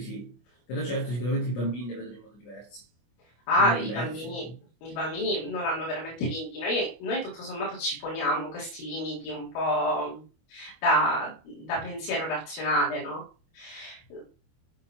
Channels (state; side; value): late; right; 25 ms